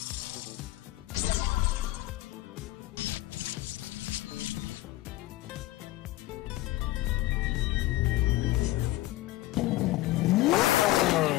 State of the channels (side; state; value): right; quieter; 16.8 dB